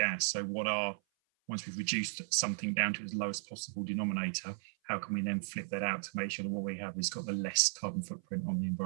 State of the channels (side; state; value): left; silent; 54 dB below the other